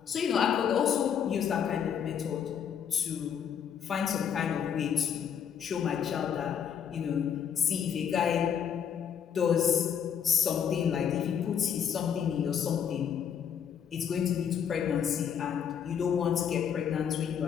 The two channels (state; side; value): quieter; right; 8.2 dB